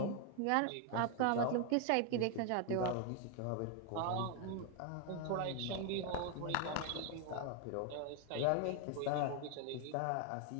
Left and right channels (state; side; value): different; both; correlation 0.01